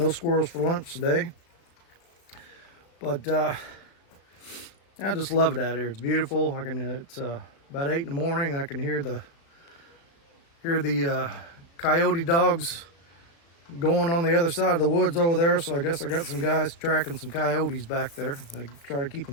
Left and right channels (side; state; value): right; late; 36 ms